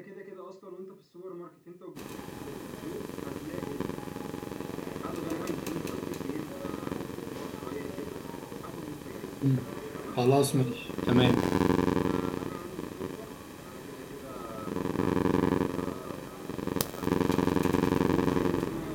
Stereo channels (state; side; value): identical; both; correlation 1.00